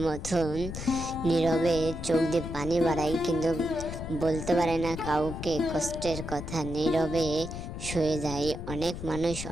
মতন নীরবে চোখ দিয়ে পানি বাড়াই, কিন্তু বলতে পারে না কাউকে কষ্টের কথা। নীরবে শুয়ে যায়। অনেক মানুষ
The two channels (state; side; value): noise; left; rumble, 8 dB below the sound